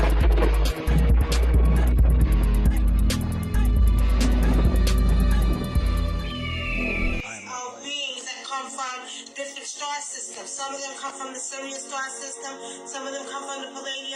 that come from different star systems. Some of them come from the Sirius star system. Some of them come from the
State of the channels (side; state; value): both; identical; correlation 1.00